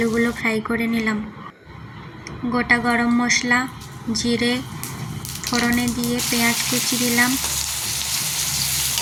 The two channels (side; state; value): both; identical; correlation 1.00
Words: ফ্রাই করে নিলাম। গোটা গরম মশলা, জিরে ফোড়নে দিয়ে পেঁয়াজ কুচি দিলাম,